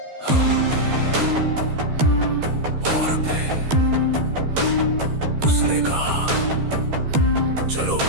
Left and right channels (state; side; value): late; left; 13 ms